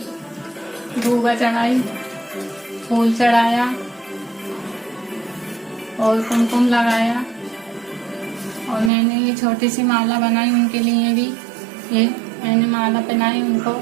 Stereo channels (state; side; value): drops out; left; at 8.9 s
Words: धूबा चढ़ाई, फूल चढ़ाया और कुमकुम लगाया। और मैंने ये छोटी सी माला बनाई उनके लिए भी। ये मैंने माला पहनाई उनको।